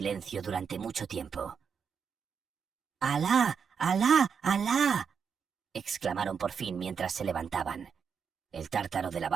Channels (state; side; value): quieter; left; 6.5 dB